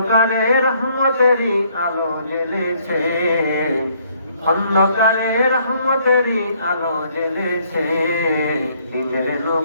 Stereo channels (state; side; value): inverted; both; correlation -0.66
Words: রহমতেরই আলো জ্বেলেছে, অন্ধকারে রহমতেরই আলো জ্বেলেছে, দিনের